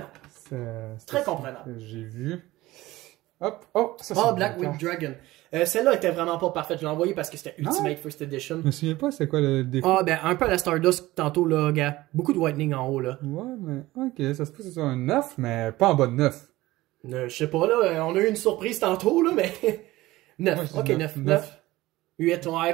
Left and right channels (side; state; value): left; quieter; 18.0 dB